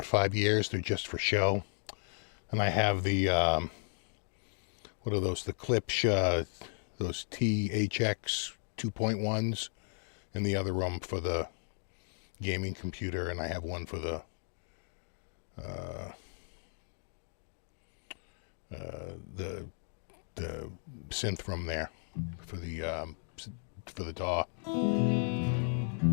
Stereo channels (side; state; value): right; silent; 55 dB below the other